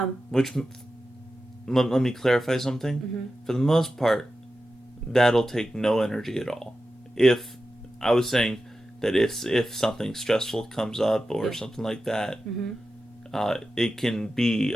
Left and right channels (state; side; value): normal; both; correlation 0.92